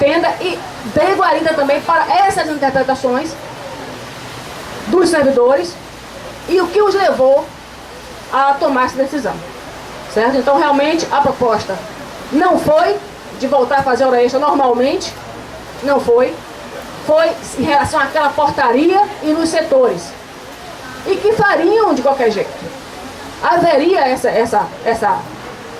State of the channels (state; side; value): identical; both; correlation 1.00